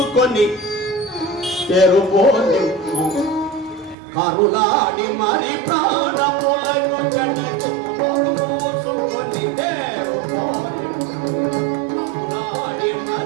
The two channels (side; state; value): left; drops out; at 4.0 s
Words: తెరుపోని కరులాడి మరి ప్రాణములను చెడకు మూసుకొని తెరుపోని కరులాడి